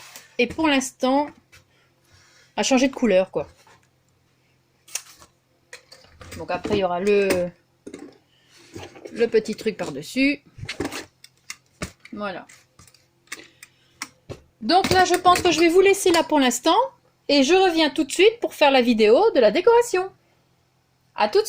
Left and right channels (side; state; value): both; identical; correlation 1.00